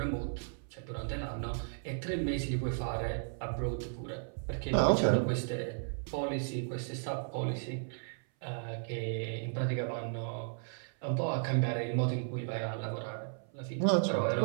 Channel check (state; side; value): silent; left; 55 dB below the other